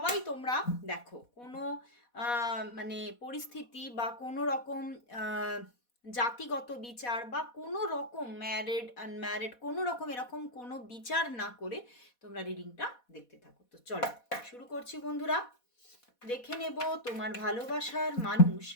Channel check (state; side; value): late; right; 4.1 ms